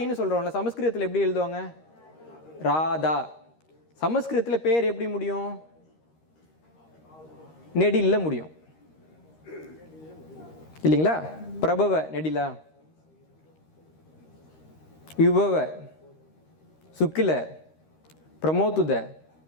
சொல்கிறோம்ல, சமஸ்கிருதத்தில் எப்படி எழுதுவாங்க? ராதா. சமஸ்கிருதத்தில் பேர் எப்படி முடியும்? நெடில்ல முடியும் இல்லைங்களா? பிரபவ நெடிலா, விபவ சுக்கில, பிரமோத்துத,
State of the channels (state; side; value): late; right; 13 ms